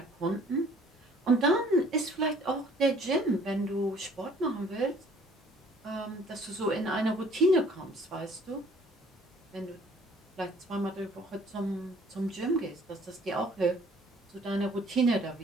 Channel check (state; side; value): normal; both; correlation 0.57